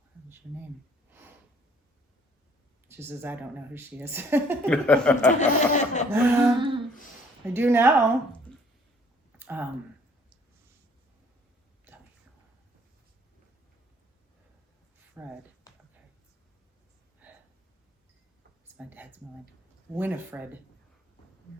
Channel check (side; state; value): both; normal; correlation 0.59